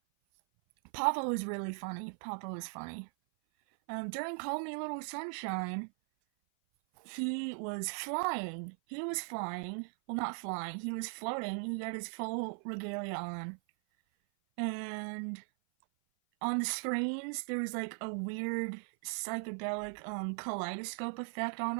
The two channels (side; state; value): left; silent; 52 dB below the other